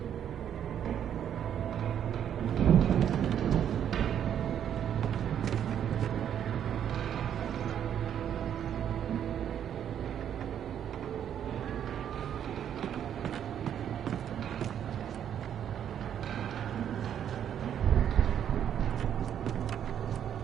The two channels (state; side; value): quieter; left; 9.4 dB